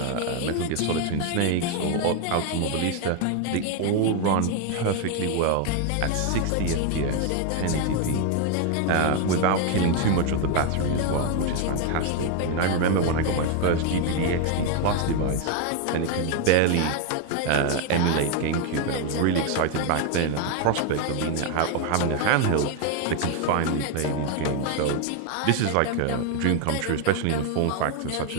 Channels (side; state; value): both; different; correlation 0.01